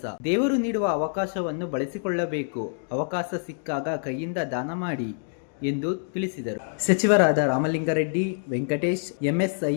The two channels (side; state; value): right; silent; digital silence